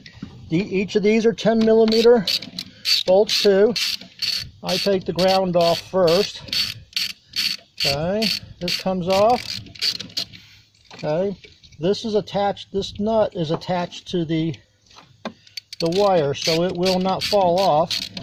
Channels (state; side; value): identical; both; correlation 1.00